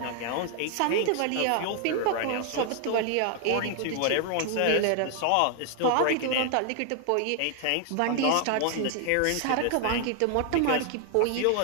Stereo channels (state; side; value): different; both; correlation 0.00